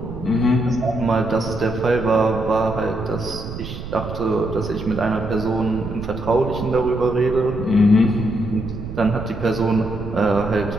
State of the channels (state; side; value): noise; right; rumble, 9 dB below the sound